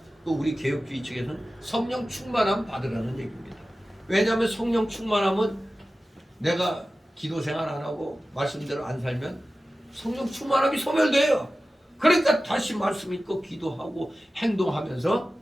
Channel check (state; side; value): normal; both; correlation 0.95